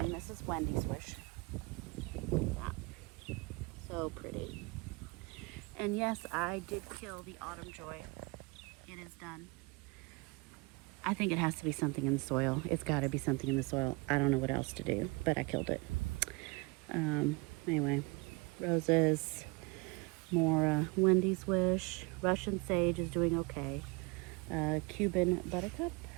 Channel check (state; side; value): quieter; left; 26.9 dB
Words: This is Wendy's Wish. That. So pretty. And yes, I did kill the Autumn Joy. It is done. I think it has to be something in the soil. It's got to be something in the soil. I don't know what else to do, but I killed it. Anyway, roses, more Wendy's Wish. Russian Sage is doing okay. Cuban Buttercup.